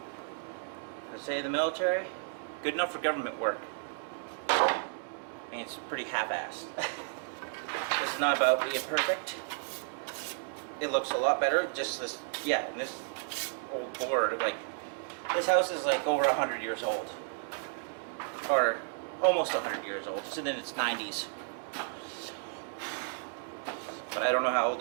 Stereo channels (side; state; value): left; silent; digital silence